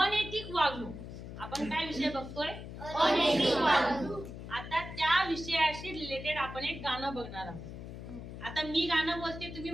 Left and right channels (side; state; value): left; noise; hum, 10 dB below the sound